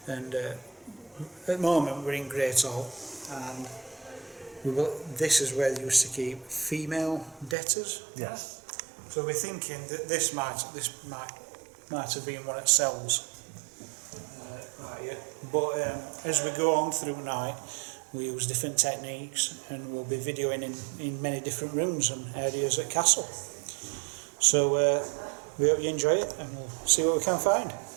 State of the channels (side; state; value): left; drops out; at 7.6 s